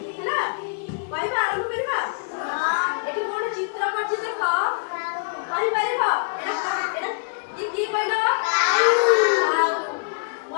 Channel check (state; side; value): quieter; right; 38.3 dB